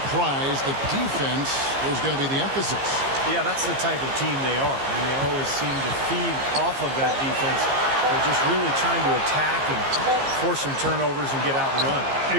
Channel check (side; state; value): left; late; 15 ms